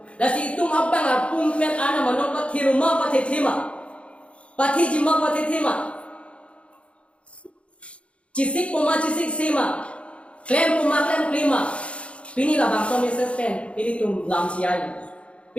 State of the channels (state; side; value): late; right; 0.060 ms